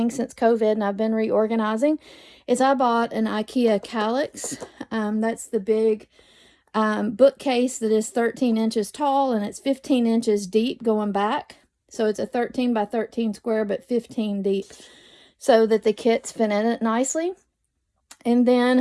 since COVID, and I've been reorganizing, is I bought an IKEA Calyx. That's the big bookcase that is 13 inches tall, and it's 15 inches deep going back. So it's a 13 by 13 square, but 15 deep, so that the kits fit in it nicely. And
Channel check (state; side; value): identical; both; correlation 1.00